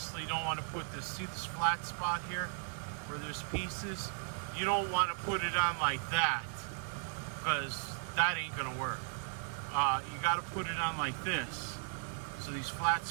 don't want to put this, see this flat spot here where there's pieces? You don't want to put it on like that, because that ain't gonna work. You got to put it on like this, so these flat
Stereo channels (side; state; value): left; silent; 53 dB below the other